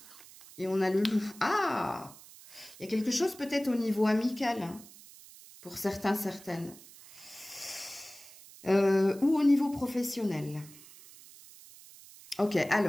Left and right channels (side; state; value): right; noise; hiss, 20 dB below the sound